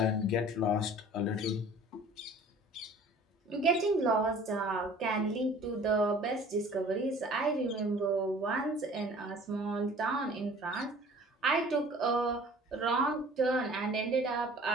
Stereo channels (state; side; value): normal; both; correlation 0.48